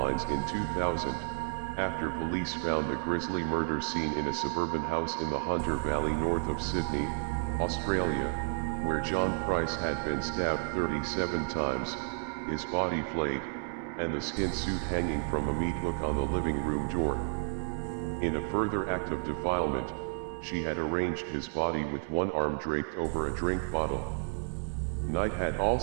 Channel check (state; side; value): silent; left; 57 dB below the other